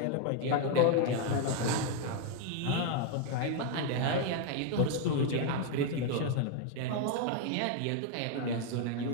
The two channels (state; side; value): different; both; correlation 0.00